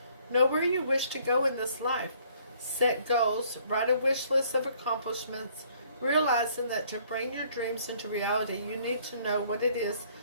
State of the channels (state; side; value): inverted; both; correlation -0.62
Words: Know where you wish to go in this life. Set goals, write a wish list of accomplishments, realizing that to bring your dreams into reality, you need to know what it is